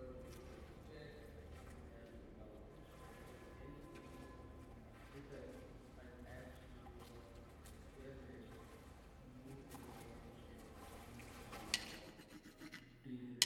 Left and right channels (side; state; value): both; identical; correlation 1.00